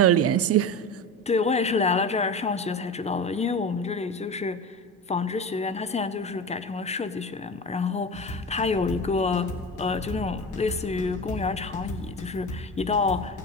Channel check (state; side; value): normal; both; correlation 0.27